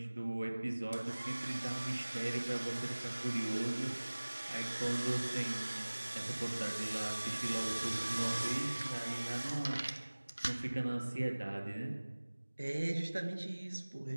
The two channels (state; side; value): inverted; both; correlation -1.00